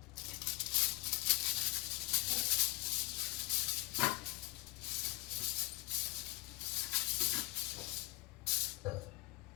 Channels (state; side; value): quieter; right; 21.0 dB